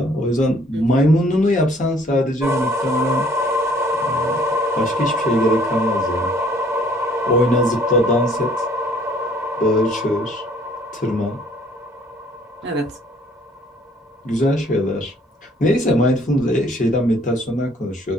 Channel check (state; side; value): normal; both; correlation 0.59